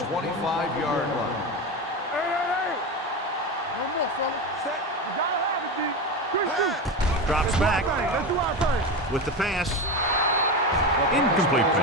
25-yard line. Hey. No more, fella. Set. You gotta have it, D. Good shoot. Drops back Let's do our thing. with the pass. Incomplete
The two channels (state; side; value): normal; both; correlation 0.20